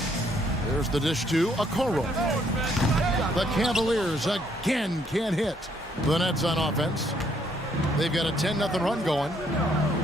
There's the dish to Okoro. The Cavaliers again can't hit. The Nets on offense. They've got a 10-0 run going.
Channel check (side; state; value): both; normal; correlation 0.69